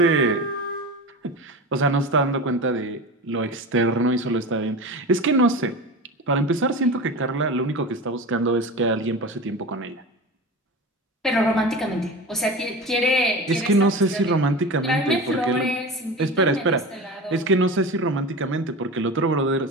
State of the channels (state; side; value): normal; both; correlation 0.29